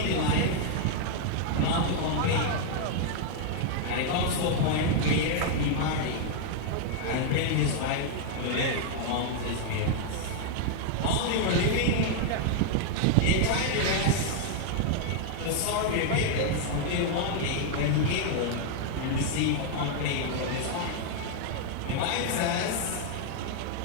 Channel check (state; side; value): different; both; correlation 0.00